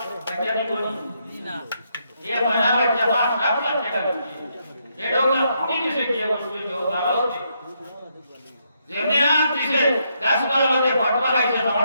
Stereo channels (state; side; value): inverted; both; correlation -0.77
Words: বাচ্চা নি কোনি না এ মনা বাচ্চা 7 লাখ টাকা এডোগা পুরি দিছে কি বলছে তো ভালো আছে যেমনি আম দিছে গাছগুলোতে ফটকা খাইছে আমার